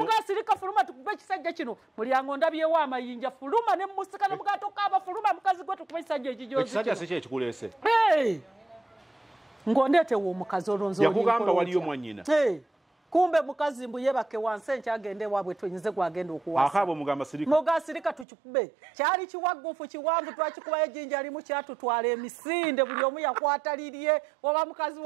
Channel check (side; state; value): left; drops out; at 18.2 s